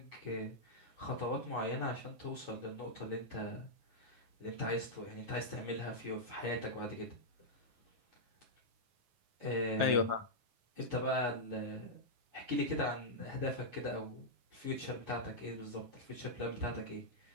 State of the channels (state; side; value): late; left; 9.4 ms